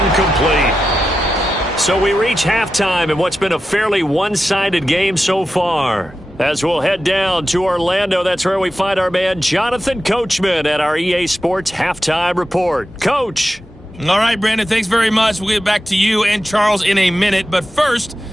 So we reach halftime in what's been a fairly one-sided game so far. As we'll head down to Orlando, that's where we find our man Jonathan Coachman at our EA Sports Halftime Report. Coach. All right, Brandon, thanks very much. We'll get back to you and Charles in a minute. But first,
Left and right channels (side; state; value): both; normal; correlation 0.91